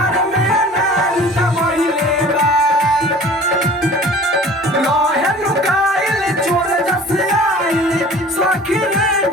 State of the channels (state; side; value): normal; both; correlation 0.45